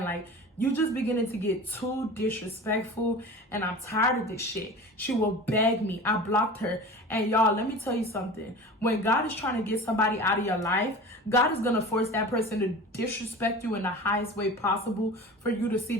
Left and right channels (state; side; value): normal; both; correlation 0.36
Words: like, you just beginning to get too disrespectful, and I'm tired of this shit. She will beg me. I blocked her. And y'all, let me tell you something. When God is trying to get somebody out of your life, God is going to force that person to disrespect you in the highest way possible for you to see